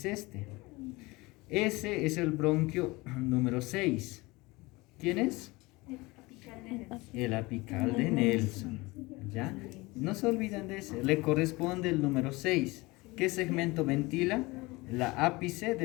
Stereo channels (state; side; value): quieter; right; 22.8 dB